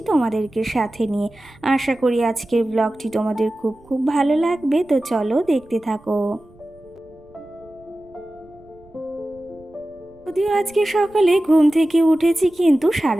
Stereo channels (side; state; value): right; noise; rumble, 27 dB below the sound